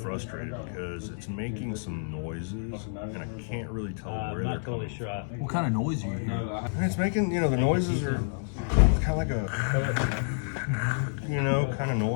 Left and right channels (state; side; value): silent; right; 59 dB below the other